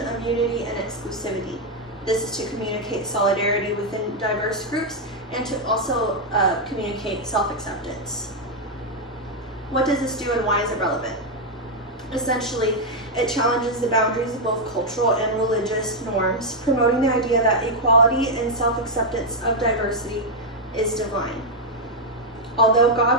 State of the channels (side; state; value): both; normal; correlation 0.00